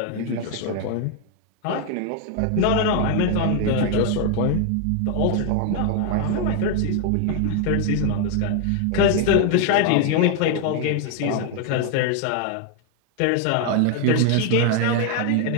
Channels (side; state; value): both; different; correlation 0.00